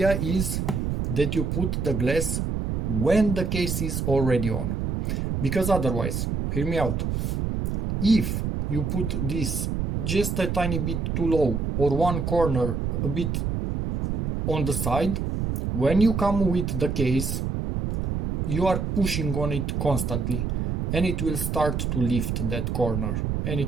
is that you put the glass when the case is already on, because otherwise, hear me out, if you put this just a tiny bit too low or one corner a bit on the side, when you come with the case, you are pushing on it constantly and it will start to lift that corner and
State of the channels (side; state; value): right; noise; rumble, 1 dB below the sound